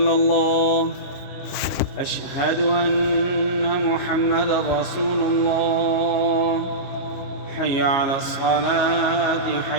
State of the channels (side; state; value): right; late; 22 ms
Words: الله. أشهد أن محمدا رسول الله. حي على الصلاة